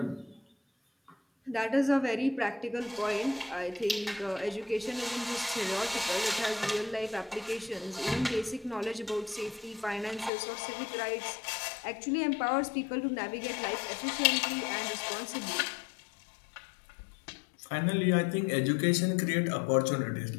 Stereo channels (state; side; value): drops out; right; at 10.3 s